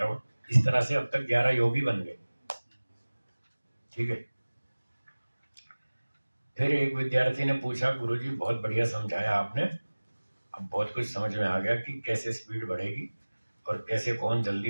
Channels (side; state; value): both; inverted; correlation -1.00